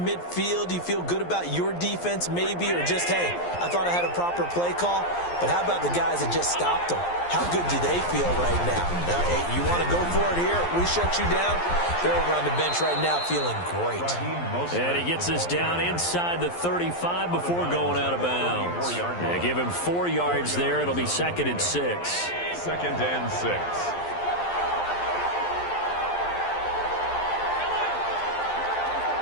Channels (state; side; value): late; right; 11 ms